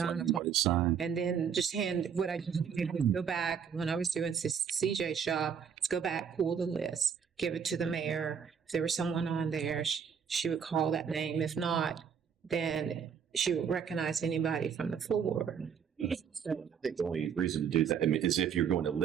9 let o'clock. anybody sign. And then just hand, what I just did was go back, when I was doing CJ shop, let's go back, pull the list, give it to the mayor. If there was someone on there, she would call that name. If not, then she would recognize anybody from the floor. So, I think the only reason to do that is if you're going to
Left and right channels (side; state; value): left; quieter; 7.2 dB